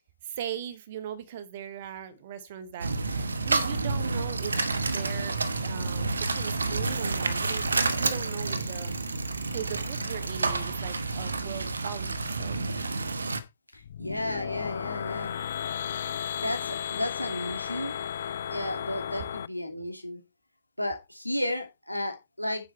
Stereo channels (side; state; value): both; inverted; correlation -0.81